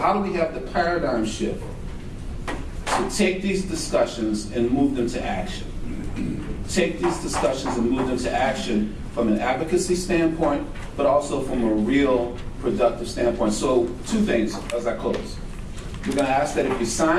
do we have the paradigm shift to take these discussions and move them to action? Take these discussions and move them to action from an advocacy standpoint, but also from a real productive standpoint. So 2 things as I close. We're going to ask that if you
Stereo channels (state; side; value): identical; both; correlation 1.00